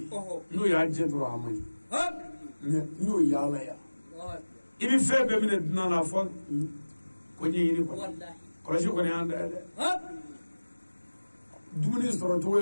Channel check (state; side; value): inverted; both; correlation -1.00